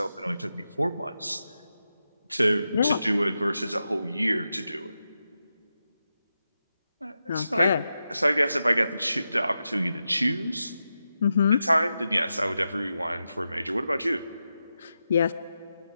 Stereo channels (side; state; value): both; inverted; correlation -0.89